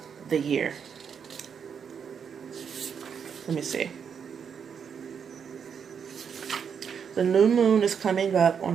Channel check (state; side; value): quieter; left; 7.1 dB